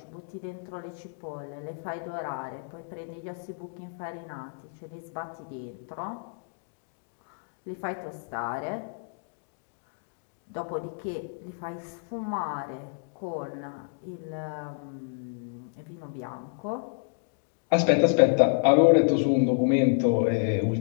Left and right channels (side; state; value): right; silent; digital silence